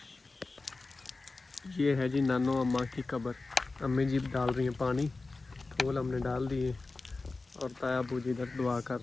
ये है जी नानो अम्मा की कब्र। अम्मी जी डाल रही हैं पानी, फूल हमने डाल दिए और ताया अब्बू जी इधर दुआ कर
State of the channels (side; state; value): right; quieter; 3.6 dB